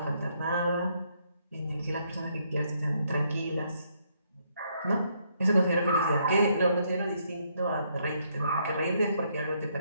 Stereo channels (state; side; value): inverted; both; correlation -0.72